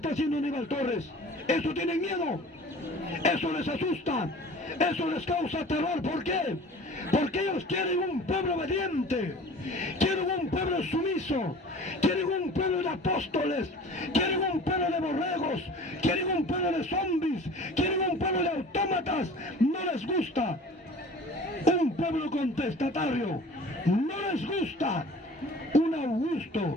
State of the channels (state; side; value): normal; both; correlation 0.43